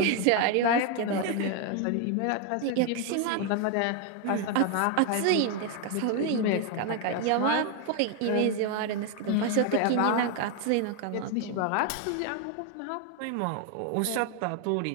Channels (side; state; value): both; different; correlation 0.01